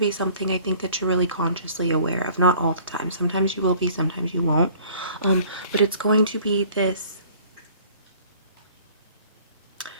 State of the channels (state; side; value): inverted; both; correlation -0.52